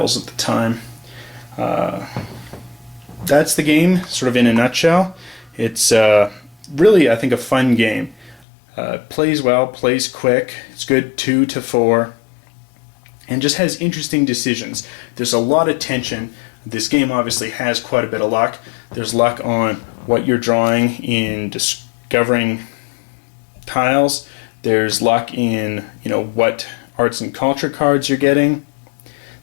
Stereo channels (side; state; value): right; drops out; at 8.5 s